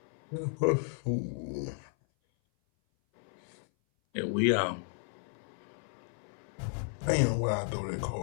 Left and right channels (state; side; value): silent; right; 55 dB below the other